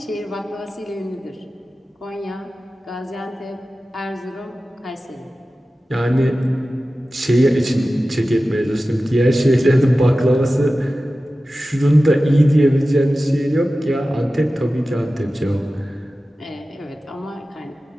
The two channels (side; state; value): both; normal; correlation 0.95